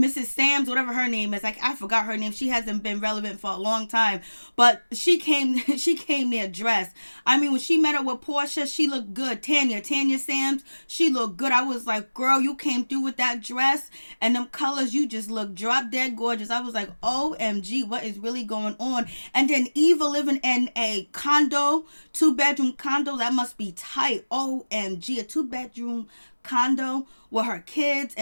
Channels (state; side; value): inverted; both; correlation -1.00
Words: Sam's, whatever her name is. Like, I forgot her name. She hasn't been relevant for a long time, but she came there dressed. I mean, when she met up with Porsha, she looked good. Tanya Sam's, she looked good. I was like, girl, you came through with that dress and them colors. You just look drop dead gorgeous. I was like, OMG, what is really going on? And then Eva living in a condo, 2-bedroom condo. That must be tight. OMG, a 2-bedroom condo with her kids